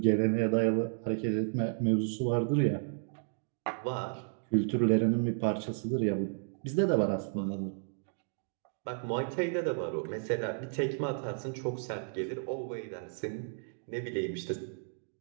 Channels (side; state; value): left; silent; digital silence